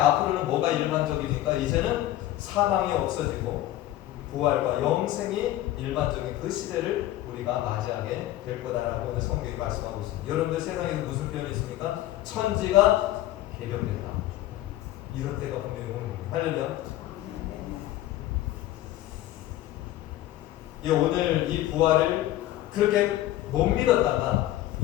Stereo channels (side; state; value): right; quieter; 14.6 dB